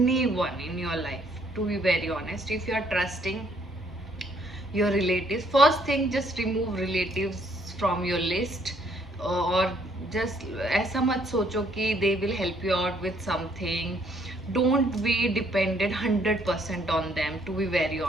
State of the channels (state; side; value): normal; both; correlation 0.66